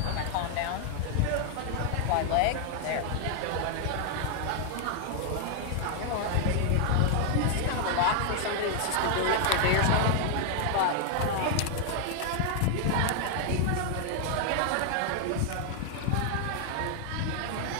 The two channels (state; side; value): different; both; correlation 0.00